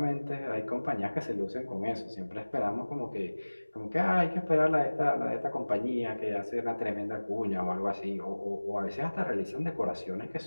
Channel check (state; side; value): inverted; both; correlation -1.00